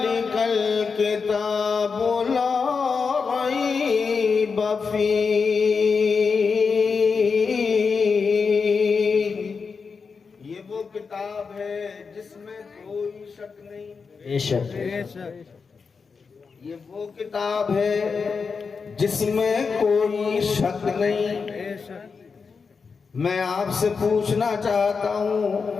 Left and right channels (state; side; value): quieter; right; 5.2 dB